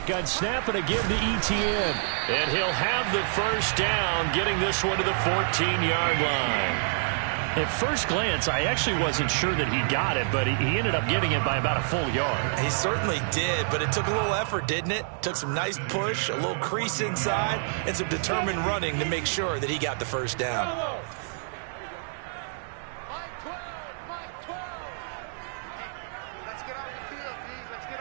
snap and a give to ETN. And he'll have the first down, getting this one to the 14-yard line. At first glance, I actually wasn't sure that he got it, but he ended up getting it by about a full yard. He certainly did, but it took a little effort, didn't it? Took some nice push, a little crease inside, and some determined running to make sure that he got the first down.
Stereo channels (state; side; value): silent; left; digital silence